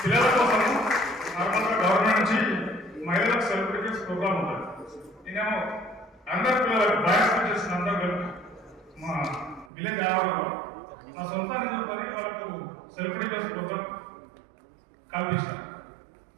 పిల్లల కోసం నార్మల్గా గవర్నమెంట్ నుంచి మహిళలకు సెలబ్రిటీస్ ప్రోగ్రామ్ ఉంటుంది. నేనేమో అందరు పిల్లలకు బాయ్స్ టీచర్స్ అందరూ కలిపి మా విలేజ్ ఆవరణలో నా సొంత నిధులతో వాళ్ళకు సెలబ్రిటీస్ ప్రోగ్రామ్ కల్పించిన.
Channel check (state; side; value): drops out; left; at 9.7 s